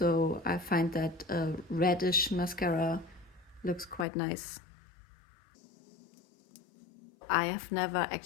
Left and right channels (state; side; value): drops out; right; at 4.0 s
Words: I find that a reddish mascara looks quite nice. I have never